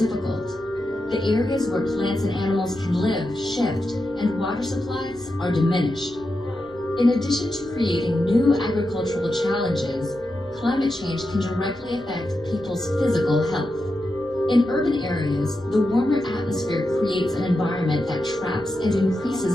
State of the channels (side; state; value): left; noise; rumble, 28 dB below the sound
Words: The areas where plants and animals can live shift, and water supplies are diminished. In addition to creating new agricultural challenges, climate change can directly affect people's physical health. In urban areas, the warmer atmosphere creates an environment that traps and